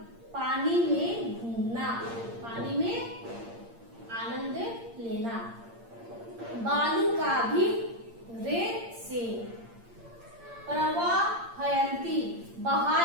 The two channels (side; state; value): left; late; 8.7 ms